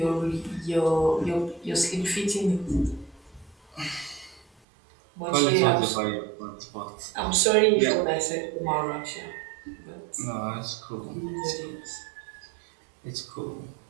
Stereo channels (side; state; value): left; drops out; at 4.5 s